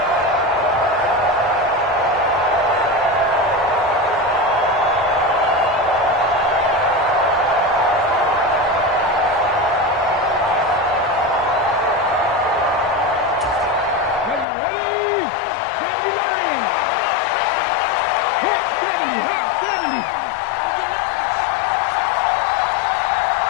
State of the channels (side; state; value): right; drops out; at 14.5 s